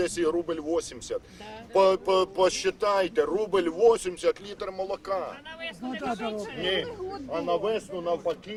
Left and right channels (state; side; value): identical; both; correlation 1.00